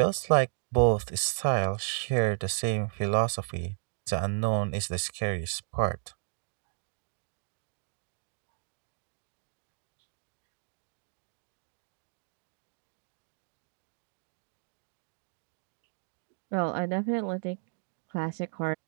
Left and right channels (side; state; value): left; silent; digital silence